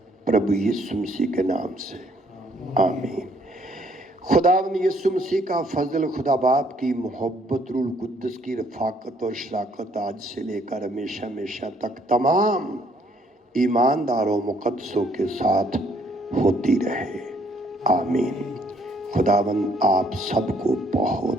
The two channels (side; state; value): both; normal; correlation 0.65